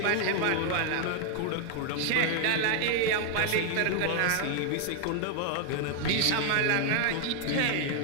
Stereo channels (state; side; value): different; both; correlation 0.00